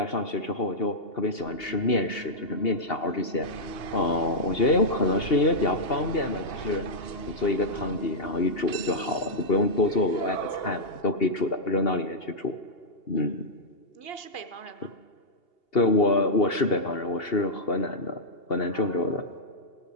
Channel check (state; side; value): late; right; 2.8 ms